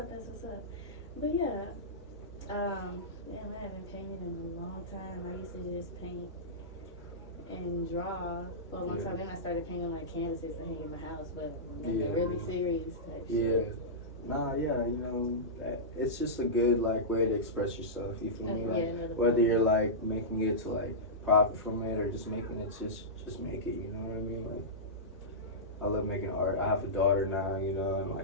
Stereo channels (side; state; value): both; normal; correlation -0.15